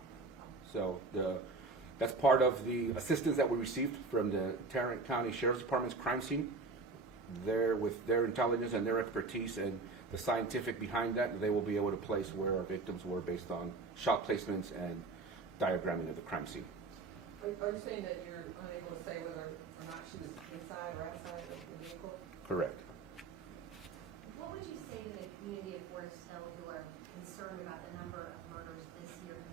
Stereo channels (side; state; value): left; quieter; 3.7 dB